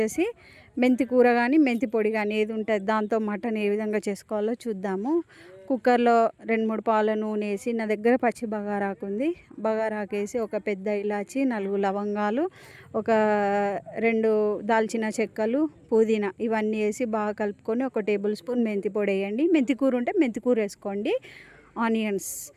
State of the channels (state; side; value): identical; both; correlation 1.00